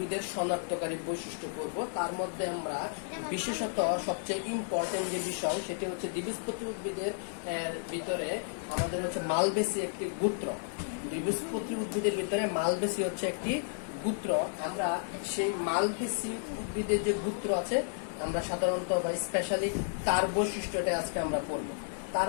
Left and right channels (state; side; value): silent; right; digital silence